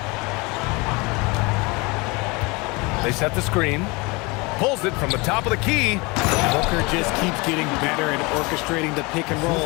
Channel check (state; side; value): quieter; right; 26.3 dB